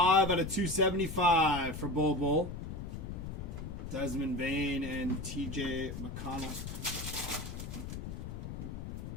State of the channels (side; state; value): left; noise; rumble, 7 dB below the sound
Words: out of 275 for Bull. Desmond Bain and TJ McConnell.